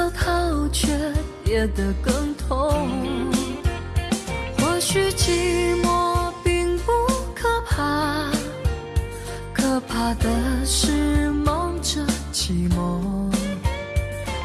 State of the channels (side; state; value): both; identical; correlation 1.00